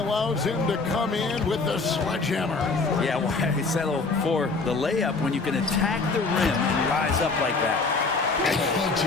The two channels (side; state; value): right; quieter; 4.0 dB